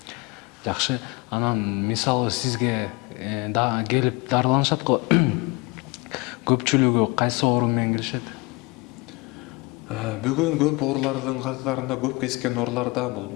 Жакшы. Анан мисалы сизге келип дарыланышат го. Көпчүлүгү кайсы оору менен келишет? Бүгүн көп оорулардын катарында көп кезиккен ооруларда бул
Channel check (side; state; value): right; quieter; 26.0 dB